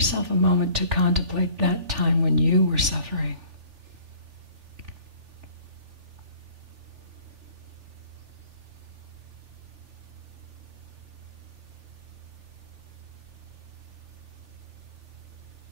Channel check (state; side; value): late; left; 3.4 ms